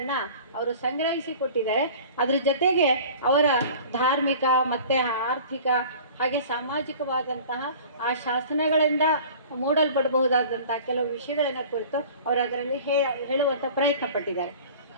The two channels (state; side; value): inverted; both; correlation -0.43